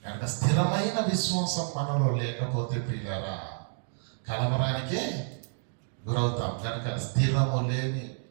కనుక స్థిరమైన విశ్వాసం మనలో లేకపోతే ప్రియులారా కలవరానికే గురవుతాం. కనుక స్థిరము లేని,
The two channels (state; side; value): silent; left; digital silence